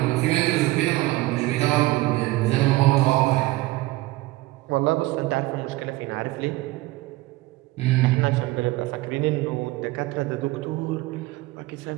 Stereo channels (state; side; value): quieter; left; 19.3 dB